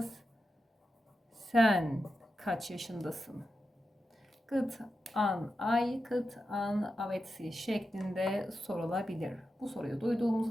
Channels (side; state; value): both; normal; correlation 0.89